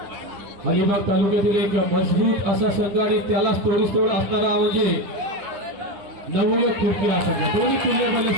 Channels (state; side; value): late; left; 10 ms